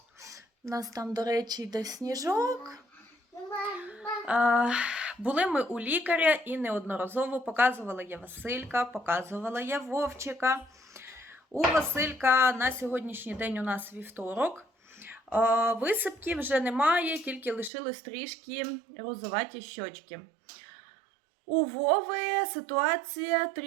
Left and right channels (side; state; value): left; drops out; at 17.7 s